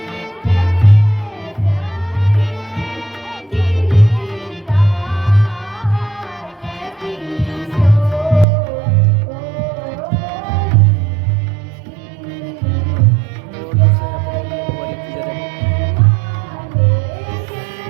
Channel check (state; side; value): drops out; left; at 8.5 s